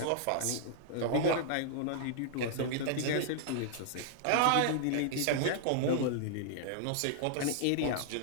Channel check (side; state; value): both; different; correlation -0.01